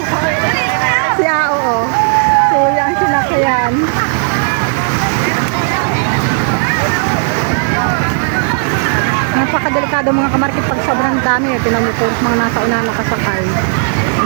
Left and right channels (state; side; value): silent; left; 60 dB below the other